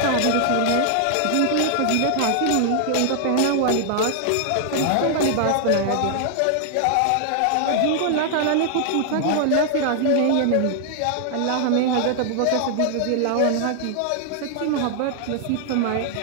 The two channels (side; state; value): both; different; correlation -0.01